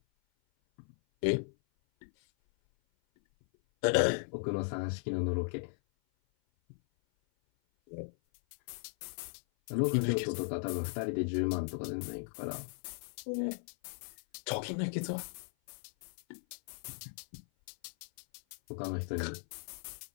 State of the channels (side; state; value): right; silent; 53 dB below the other